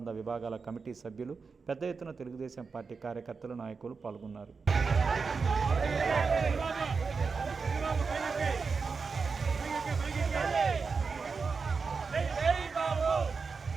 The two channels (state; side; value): quieter; left; 4.9 dB